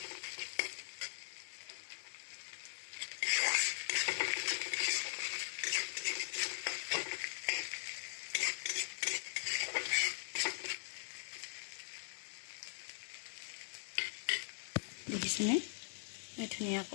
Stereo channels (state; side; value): silent; right; digital silence